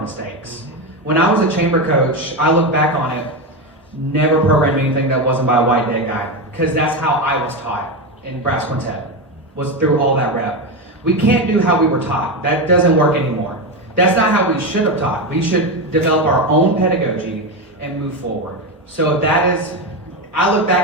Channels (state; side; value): normal; both; correlation 0.14